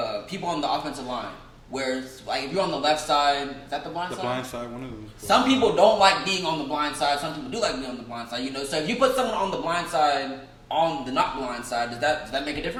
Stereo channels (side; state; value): both; identical; correlation 1.00